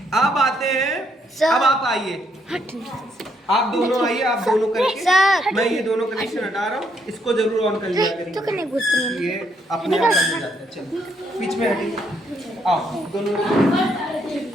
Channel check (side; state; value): both; normal; correlation 0.73